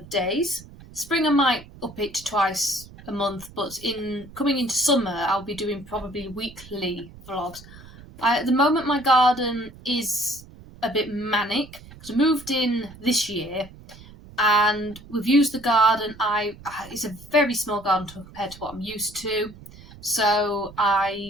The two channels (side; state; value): right; noise; rumble, 19 dB below the sound